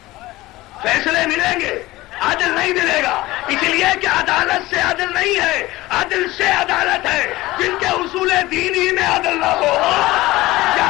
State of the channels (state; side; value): quieter; right; 18.5 dB